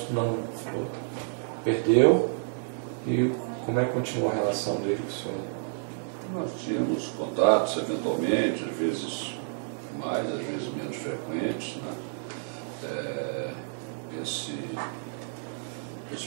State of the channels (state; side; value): silent; left; 58 dB below the other